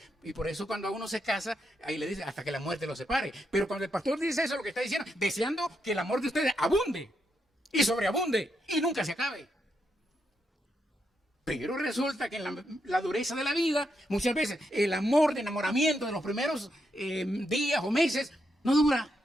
Y por eso cuando a uno se casa, ahí le dice hasta que la muerte lo separe. Pero cuando el pastor dice eso, lo que está diciendo, deseando que el amor de ustedes abunde y sobreabunde y nunca se acabe. Pero resulta que en la dureza de la vida, muchas veces el amor de enamoramiento de los primeros días o meses no dura.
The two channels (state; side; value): normal; both; correlation 0.81